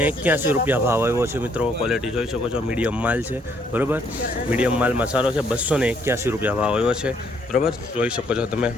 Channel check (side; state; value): both; normal; correlation 0.68